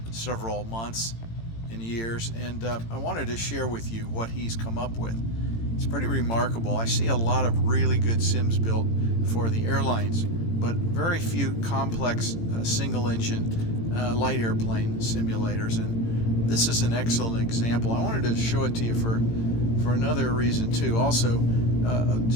several months and years, and I wanted to share with you what he's come up with. It's pretty remarkable. I see a lot of really good sims built for the airlines, but very few complex single engine light airplane simulators, and this is an excellent example. I wanted to show it to you for another reason too. Also,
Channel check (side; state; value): right; late; 18 ms